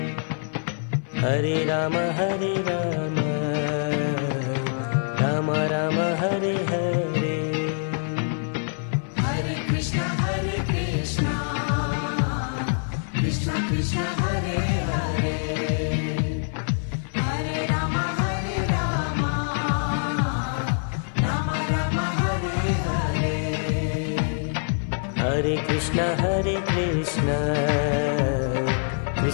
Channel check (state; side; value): silent; right; 56 dB below the other